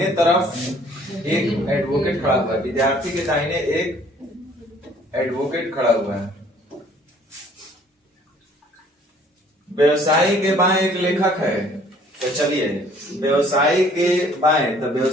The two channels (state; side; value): normal; both; correlation 0.57